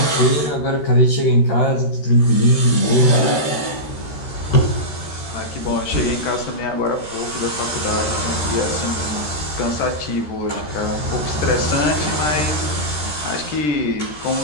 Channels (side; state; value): right; late; 13 ms